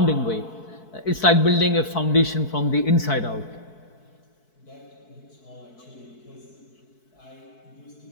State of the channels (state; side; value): late; right; 4.6 ms